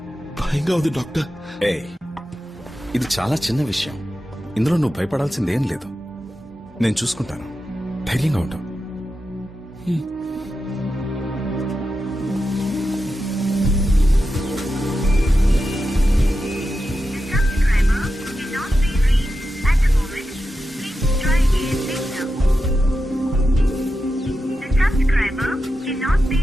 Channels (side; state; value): both; normal; correlation 0.90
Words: భయంగా ఉంది డాక్టర్. ఇది చాలా చిన్న విషయం, ఇందులో నువ్వు భయపడాల్సిందేం లేదు. నేను చూసుకుంటాను, ధైర్యంగా ఉంటావు.